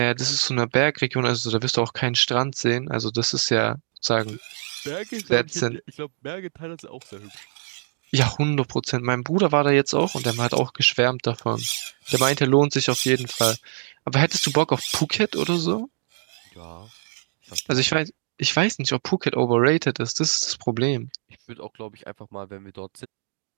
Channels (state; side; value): silent; left; digital silence